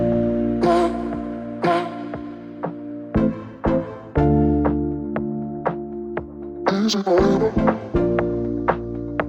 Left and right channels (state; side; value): identical; both; correlation 1.00